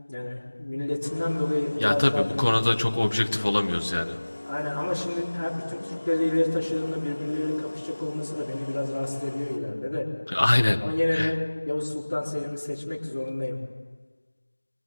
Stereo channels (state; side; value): inverted; both; correlation -1.00